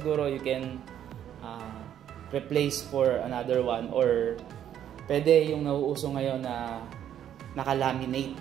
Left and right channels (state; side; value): quieter; left; 10.3 dB